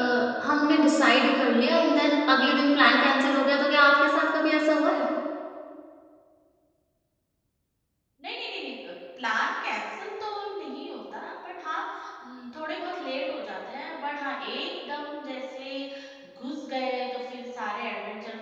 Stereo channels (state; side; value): identical; both; correlation 1.00